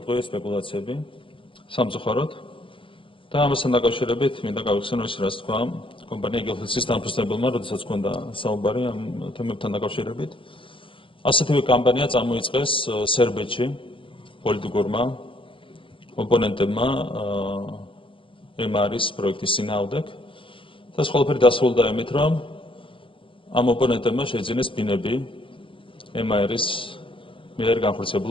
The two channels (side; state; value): right; late; 0.25 ms